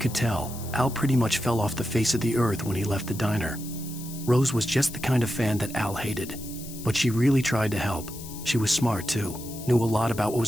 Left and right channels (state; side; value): noise; left; hiss, 14 dB below the sound